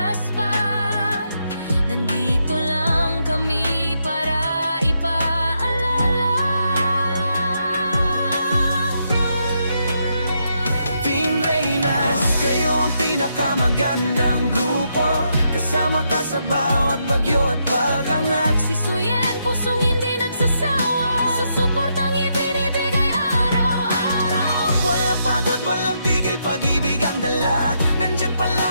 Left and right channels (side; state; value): both; inverted; correlation -0.79